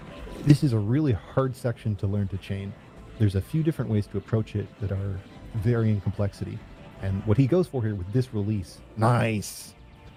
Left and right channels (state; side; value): identical; both; correlation 1.00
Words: This is a really hard section to learn to chain. There's a few different ways to approach it that are varying complexity. And what he goes for here with this release, nice!